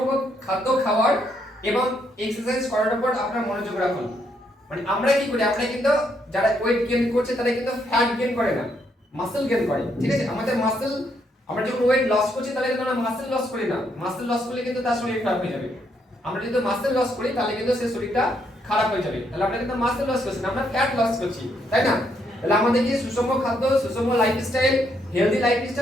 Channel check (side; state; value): both; normal; correlation 0.75